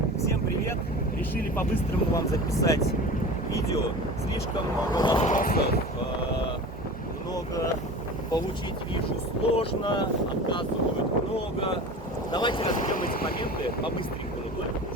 Всем привет! Решили по-быстрому вам записать видео. Слишком много вопросов, много получить вижу сложно, отказывают много. Давайте разберем эти моменты по-быстренькому, только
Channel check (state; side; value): normal; both; correlation 0.35